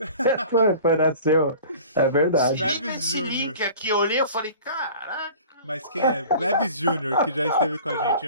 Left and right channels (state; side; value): inverted; both; correlation -0.43